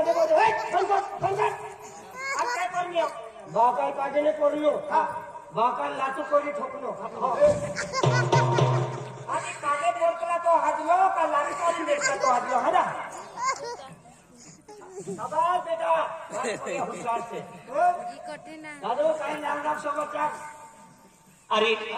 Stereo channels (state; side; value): identical; both; correlation 1.00